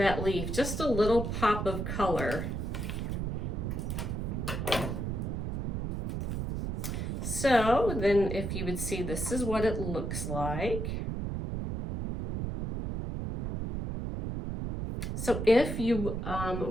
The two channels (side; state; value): right; noise; rumble, 3 dB below the sound